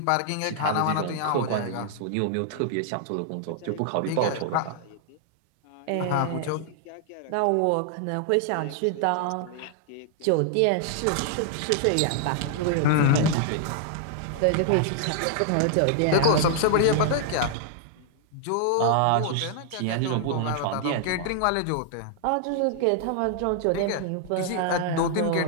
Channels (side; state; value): both; different; correlation 0.00